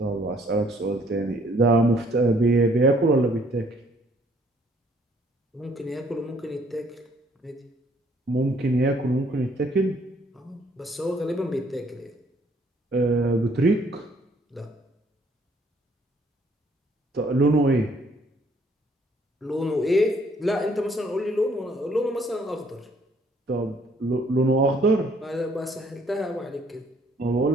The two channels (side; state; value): both; normal; correlation 0.63